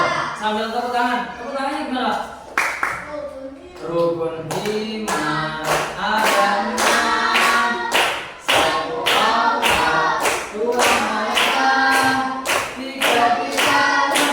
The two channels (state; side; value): identical; both; correlation 1.00